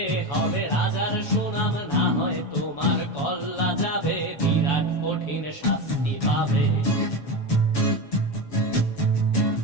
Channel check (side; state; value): right; late; 7.1 ms